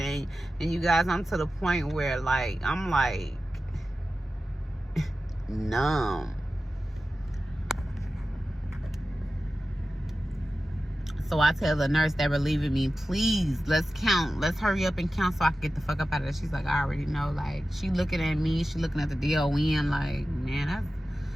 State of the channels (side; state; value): both; normal; correlation 0.94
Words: And you guys, I'm to the point where, like, I'm like numb. So I tell the nurse that relieving me, please, let's count. Let's hurry up and count so I can get the fuck up out of there. She's like, I already know. Like, she looking at me. She looking at the DON like, man, that's...